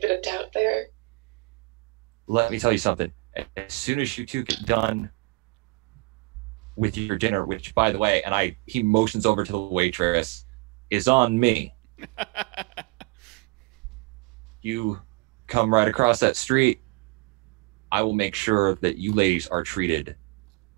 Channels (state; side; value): quieter; left; 25.5 dB